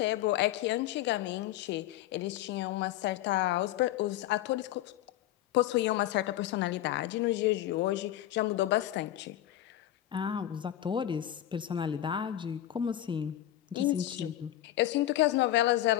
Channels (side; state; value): right; quieter; 13.1 dB